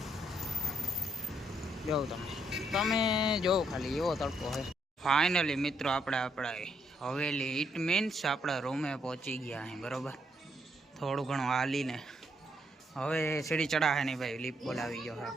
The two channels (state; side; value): normal; both; correlation 0.74